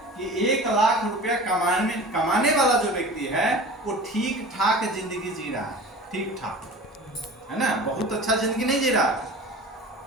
कि 1 लाख रुपया कमाने वाला जो व्यक्ति है, वो ठीक ठाक जिंदगी जी रहा है, ठीक ठाक, है ना, बहुत अच्छा जिंदगी नहीं जी रहा।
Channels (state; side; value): normal; both; correlation 0.38